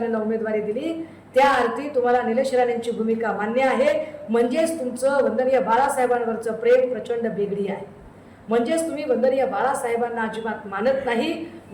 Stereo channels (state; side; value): identical; both; correlation 1.00